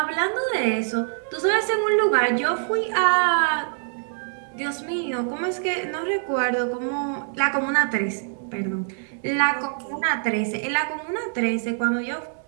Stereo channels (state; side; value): silent; left; digital silence